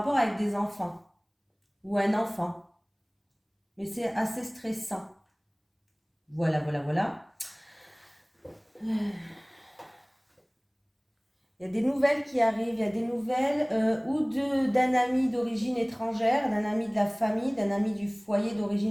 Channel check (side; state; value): both; identical; correlation 1.00